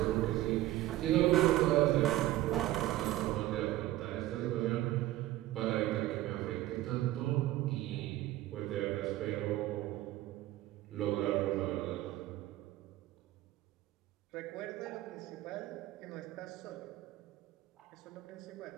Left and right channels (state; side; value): quieter; left; 15.6 dB